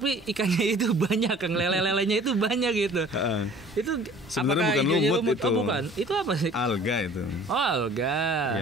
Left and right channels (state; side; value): normal; both; correlation 0.49